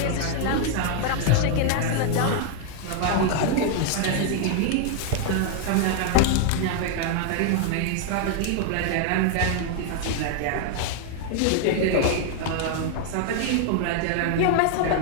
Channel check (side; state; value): both; different; correlation 0.00